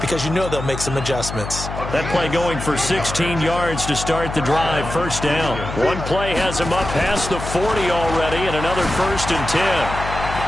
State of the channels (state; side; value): noise; left; hum, 7 dB below the sound